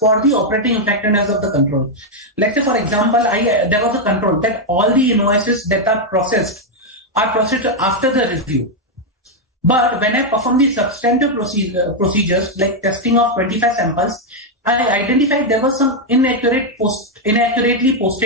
the operating effectiveness of the control. Let's say, for example, there was a control that all the invoices that are processed after the review. But when I perform the substantive procedures like testing of 25 samples, I identified there was some inaccurately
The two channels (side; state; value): both; normal; correlation 0.01